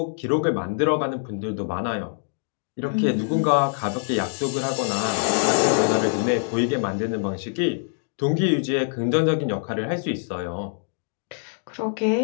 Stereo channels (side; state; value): right; silent; digital silence